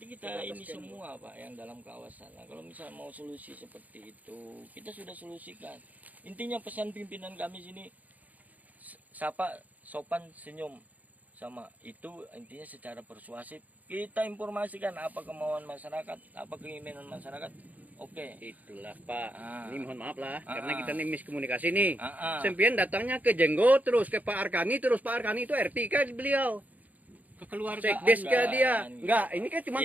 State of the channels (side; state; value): left; late; 0.078 ms